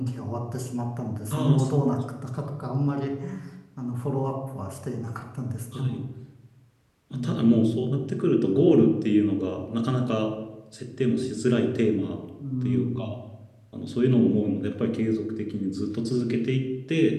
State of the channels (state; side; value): identical; both; correlation 1.00